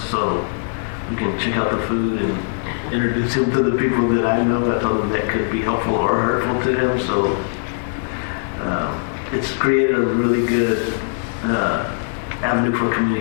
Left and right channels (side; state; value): right; silent; digital silence